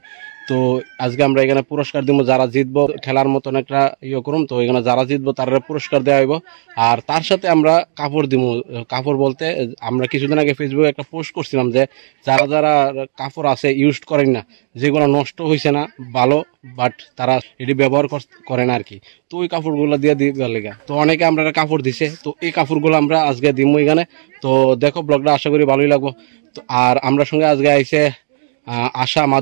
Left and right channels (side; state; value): left; silent; digital silence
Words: তো আজকে আমরা এখানে পুরস্কার দিব, যারা জিতবো খেলার মতন একটা করুম। তো এখানে যারা জিতবো তারা পুরস্কার দেওয়া হইব, আর তার সাথে আমরা কাপড় দিব। কাপড় বলতে আমরা কিছুদিন আগে ফেসবুকে একটা পোস্ট করছিলাম যে যারা যারা কাপড় আছে ইউজ করেন না, যেগুলো নষ্ট হয়েছে না ভালো, বাট তারা এটি ব্যবহার করে না আর কি। তো ওই কাপড়গুলো দিয়ে দিবার লেগা তো অনেকে আমরা কাপড় দিছে। তো এই কাপড়গুলো আমরা আজকে দিব এখানে। তো দেখো ব্লগটা, আশা করি ভালোই লাগবো। তো আর আমরা সঙ্গে আজকে আইছে আশা